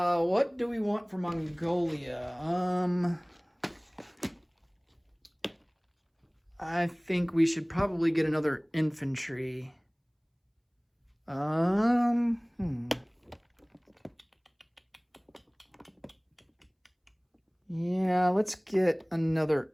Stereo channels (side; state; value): both; identical; correlation 1.00